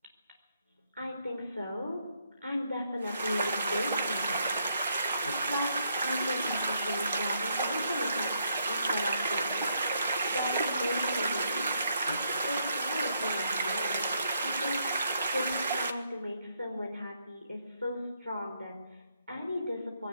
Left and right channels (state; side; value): inverted; both; correlation -0.75